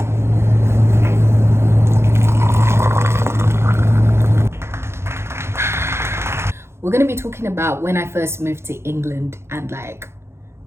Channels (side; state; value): left; late; 0.12 ms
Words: we're going to be talking about when I first moved to England and like